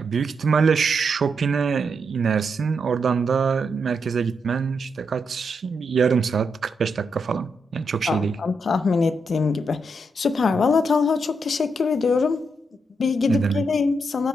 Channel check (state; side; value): normal; both; correlation 0.81